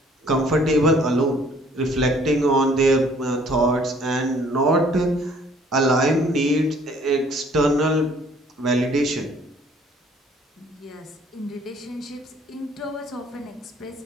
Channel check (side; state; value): both; normal; correlation 0.58